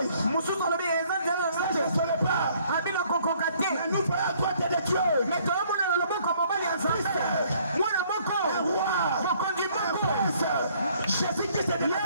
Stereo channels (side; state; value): both; inverted; correlation -0.62